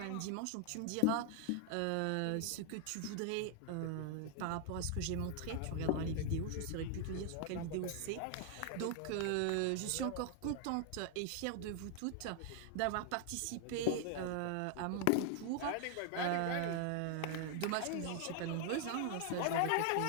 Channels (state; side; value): different; both; correlation 0.00